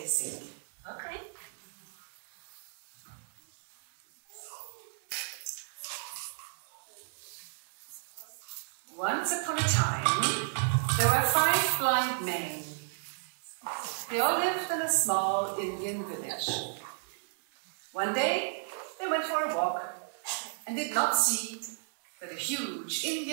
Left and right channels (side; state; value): left; silent; digital silence